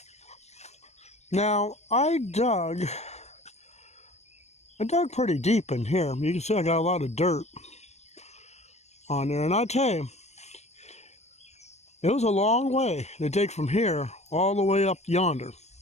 Now, I dug pretty deep in here. You can see I got a lot of dirt on there. And I tell you, it was a long way to dig from here all the way up yonder.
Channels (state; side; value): late; right; 0.32 ms